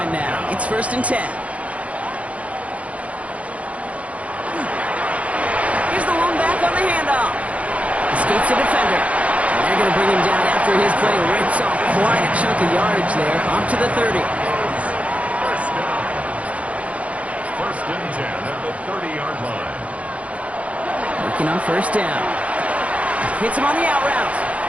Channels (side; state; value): left; late; 0.065 ms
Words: now. It's 1st and 10. Here's the one back on the handoff. Escapes the defender. And they're going to bring him down after after his play rips off quite a chunk of yardage there, up to the 30. First down. First and 10 at the 30-yard line. Working on first down. Hits him on the out route.